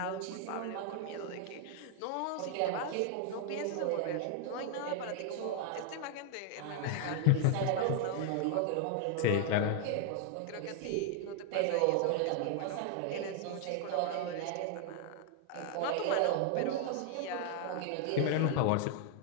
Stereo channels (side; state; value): both; different; correlation 0.00